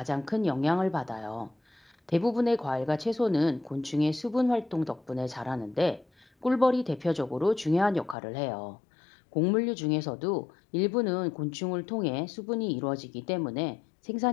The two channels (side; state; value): right; drops out; at 8.2 s